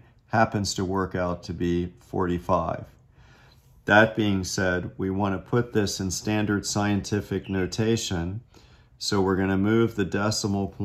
happens to work out to be 45. That being said, we want to put this in standard scientific notation. So we're going to move the decimal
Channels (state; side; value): identical; both; correlation 1.00